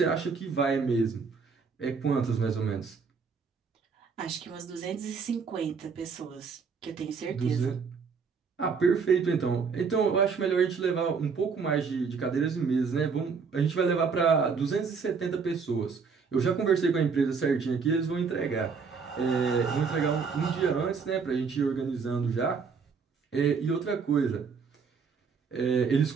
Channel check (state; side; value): quieter; left; 5.5 dB